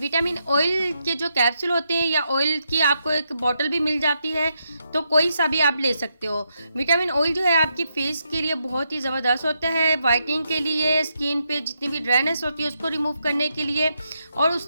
ऑयल के जो कैप्सूल होते हैं या ऑयल की आपको एक बॉटल भी मिल जाती है, तो कोई सा भी आप ले सकते हो। विटामिन ऑयल जो है आपकी फेस के लिए बहुत ही ज़बरदस्त होता है, वाइटनिंग के लिए, स्किन पे जितनी भी ड्राइनेस होती है उसको रिमूव करने के लिए और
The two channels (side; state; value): both; inverted; correlation -0.81